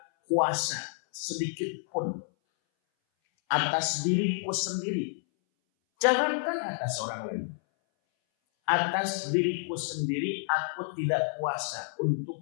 kuasa sedikit pun atas diriku sendiri. Jangankan atas orang lain. Atas diriku sendiri aku tidak kuasa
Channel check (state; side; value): silent; right; 58 dB below the other